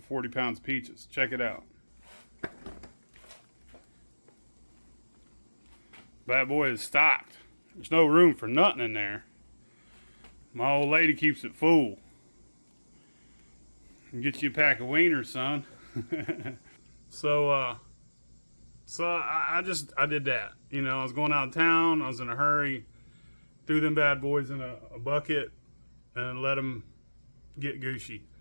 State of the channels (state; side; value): inverted; both; correlation -1.00